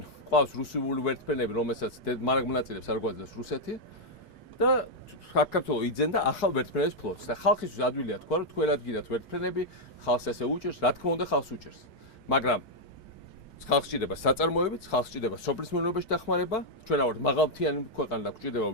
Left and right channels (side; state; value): right; late; 1.3 ms